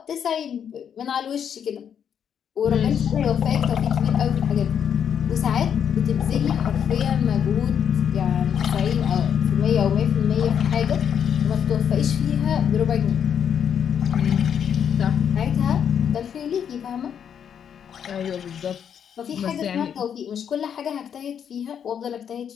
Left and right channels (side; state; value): right; quieter; 8.2 dB